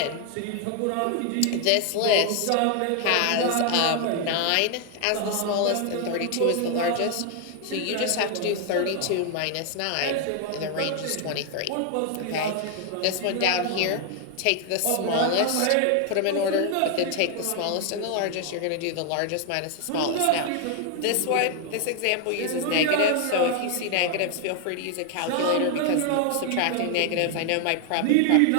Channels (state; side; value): different; both; correlation 0.00